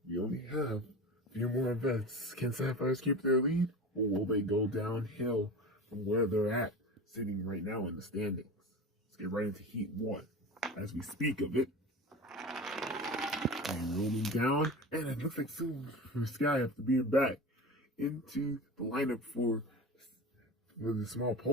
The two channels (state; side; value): normal; both; correlation 0.31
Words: We only have a few more events. Can Sapphires keep their lead, or will they go downhill from where they're at, sitting right now in the standings? Let's get right into Heat 1 as we speak of it. And rolling down, and it looks like soon for Sky after being back into the lineup for the Small